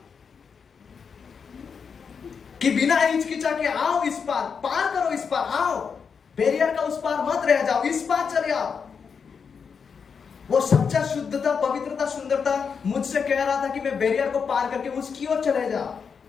कि बिना हिचकिचा के आओ इस पार करो, इस पार आओ, बैरियर का उस पार मत रह जाओ, इस पार चले आओ। वो सच्चा शुद्धता, पवित्रता, सुंदरता मुझसे कह रहा था कि मैं बैरियर को पार करके उसकी ओर चले जाओ।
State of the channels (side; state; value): right; quieter; 6.1 dB